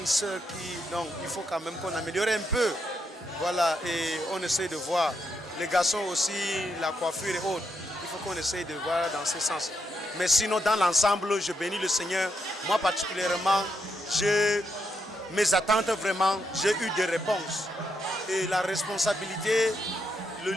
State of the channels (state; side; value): normal; both; correlation 0.80